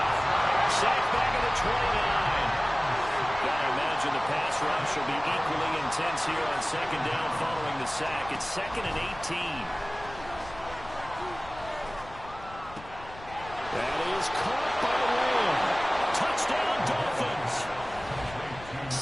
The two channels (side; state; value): left; noise; rumble, 17 dB below the sound